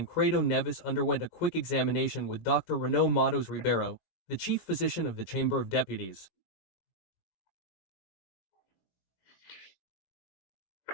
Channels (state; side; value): late; right; 19 ms